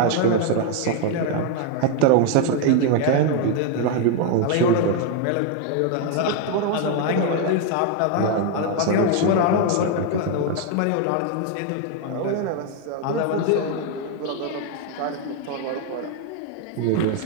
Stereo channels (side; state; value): both; different; correlation 0.01